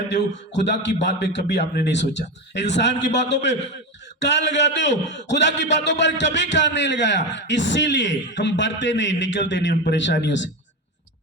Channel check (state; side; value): normal; both; correlation 0.18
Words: हो। खुदा की बात पे कभी आपने नहीं सोचा। इंसान की बातों पे कान लगाते हो, खुदा की बातों पर कभी कान नहीं लगाया। इसीलिए हम बढ़ते नहीं, निकलते नहीं उन परेशानियों से।